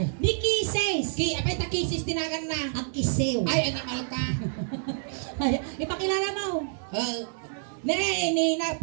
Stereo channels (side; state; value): left; silent; digital silence